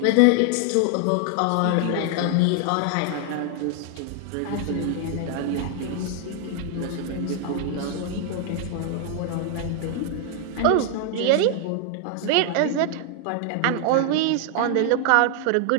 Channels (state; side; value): different; both; correlation 0.00